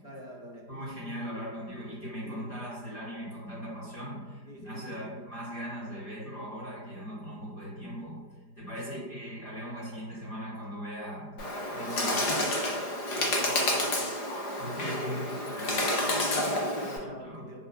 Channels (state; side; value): late; right; 4.9 ms